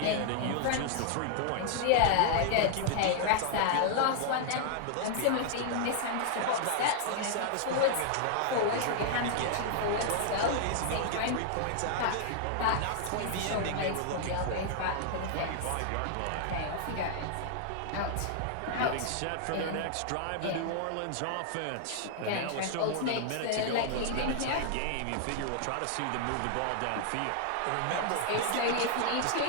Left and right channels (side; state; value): both; different; correlation 0.00